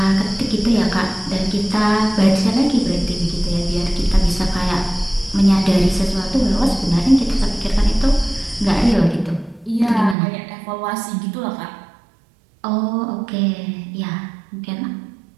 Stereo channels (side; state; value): left; drops out; at 10.2 s